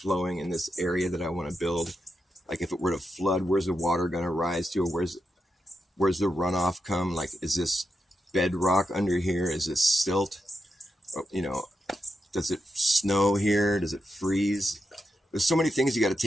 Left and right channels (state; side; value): normal; both; correlation 0.86